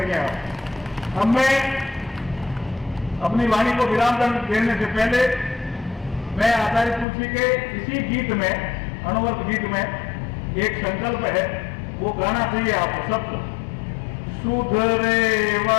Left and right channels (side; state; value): right; drops out; at 7.1 s